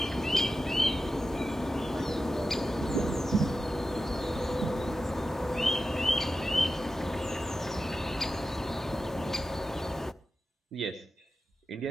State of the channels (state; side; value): normal; both; correlation 0.92